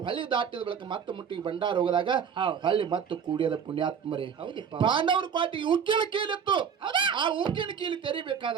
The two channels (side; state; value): left; quieter; 7.2 dB